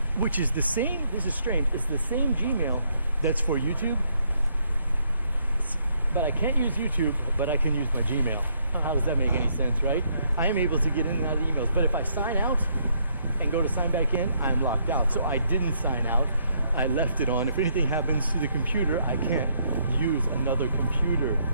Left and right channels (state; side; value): inverted; both; correlation -0.72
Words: which is the same. This is strange. It's the same Gmail that's for YouTube, but I can't use YouTube, but I can use my Gmail. How does that make any sense, right? I am able to get in and out of emails, but if I sign out and go to sign back in, I'm locked out. So I didn't sign out. I left it on. If anything happens to the computer, I can't use another computer